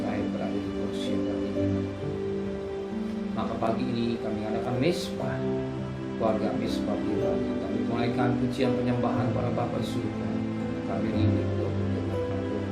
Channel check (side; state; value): both; identical; correlation 1.00